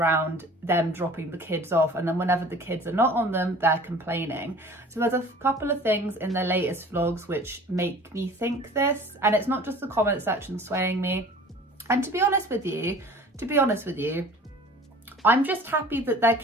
them dropping the kids off, and then whenever the kids are not on them, they're complaining. So there's a couple of things in their latest vlogs which make me think this, and it's not just the comment section swaying me. And to be honest with you, I'm just happy that their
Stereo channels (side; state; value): both; normal; correlation 0.45